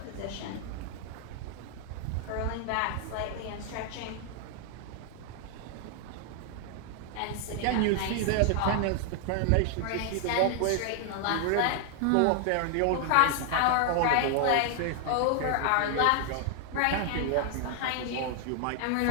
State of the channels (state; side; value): different; both; correlation 0.00